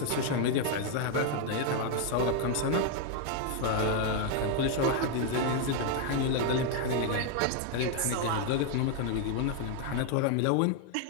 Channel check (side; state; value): both; different; correlation 0.00